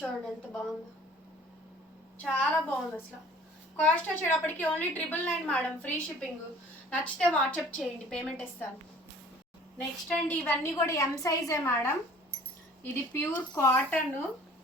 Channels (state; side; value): normal; both; correlation 0.51